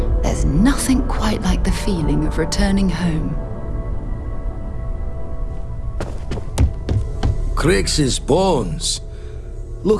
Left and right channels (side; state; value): both; identical; correlation 1.00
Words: there's nothing quite like the feeling of returning home. Crix's bones.